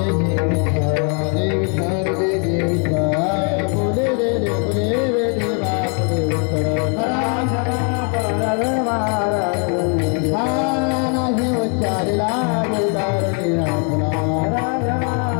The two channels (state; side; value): quieter; right; 38.6 dB